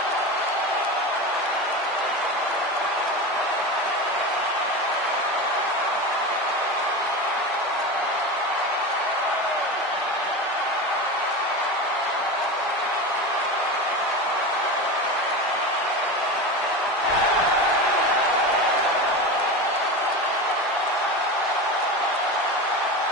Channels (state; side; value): normal; both; correlation 0.24